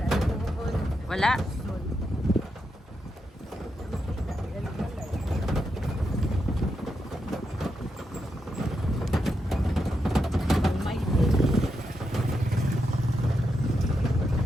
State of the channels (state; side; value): normal; both; correlation 0.84